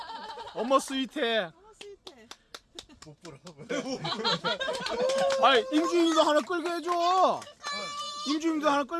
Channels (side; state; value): both; identical; correlation 1.00